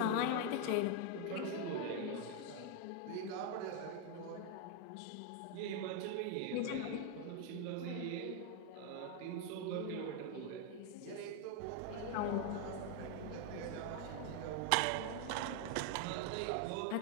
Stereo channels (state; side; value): different; both; correlation 0.01